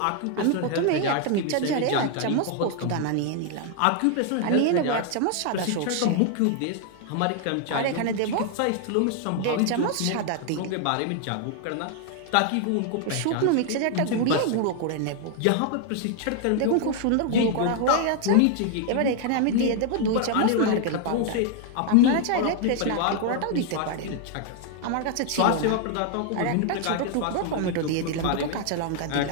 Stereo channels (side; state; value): both; different; correlation 0.00